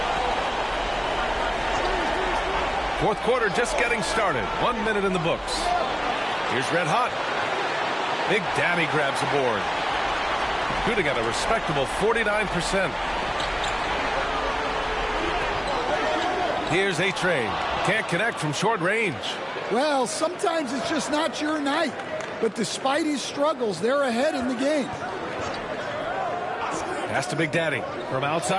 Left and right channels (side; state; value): both; identical; correlation 1.00